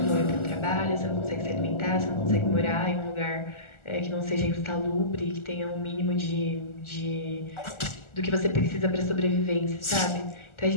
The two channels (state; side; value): late; right; 1.4 ms